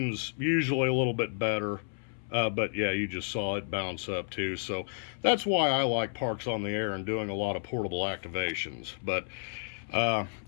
usually a little bit better, but yeah, you just saw it bounce up too. So that's why I like parks on the air and doing a lot of portable activations. But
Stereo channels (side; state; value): right; silent; 57 dB below the other